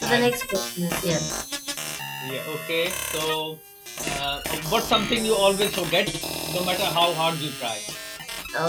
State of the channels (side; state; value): both; identical; correlation 1.00